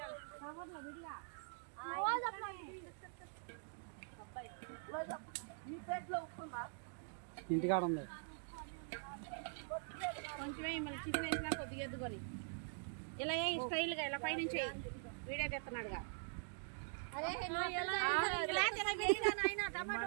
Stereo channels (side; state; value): left; silent; digital silence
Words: ఇంటికాడ ఉంది కొంచెమే చికెన్ వేసినా కొద్దిగా ఎద్దుకొని ఇలా స్టైల్గా ఇలా పైనుంచి వీడియో తెస్తున్నాడుగా